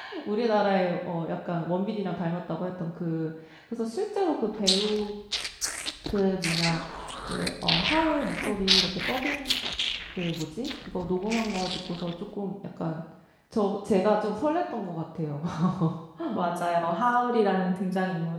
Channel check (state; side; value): identical; both; correlation 1.00